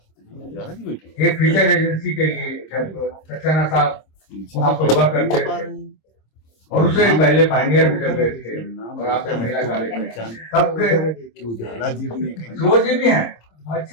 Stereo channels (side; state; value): right; late; 26 ms